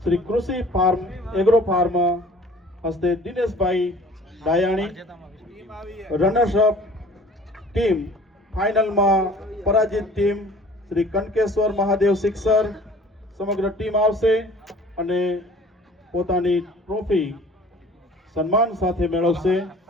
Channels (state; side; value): normal; both; correlation 0.49